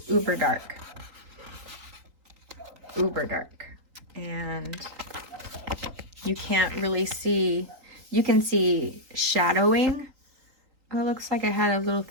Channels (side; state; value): left; late; 3.9 ms